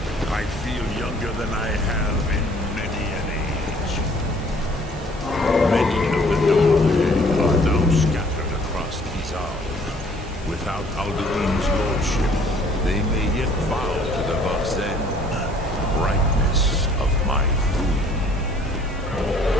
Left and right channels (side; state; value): both; normal; correlation 0.57